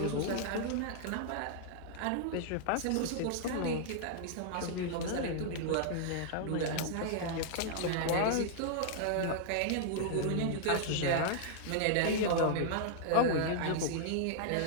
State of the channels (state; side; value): different; both; correlation -0.01